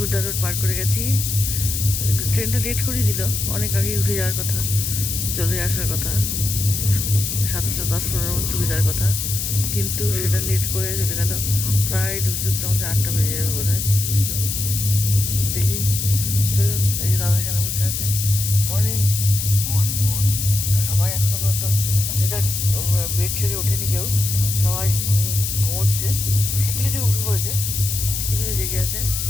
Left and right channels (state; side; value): noise; left; hiss, 3 dB below the sound